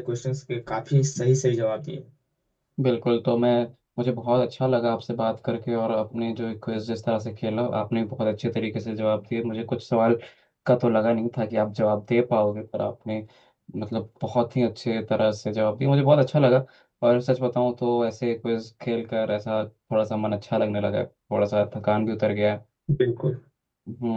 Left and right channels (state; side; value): identical; both; correlation 1.00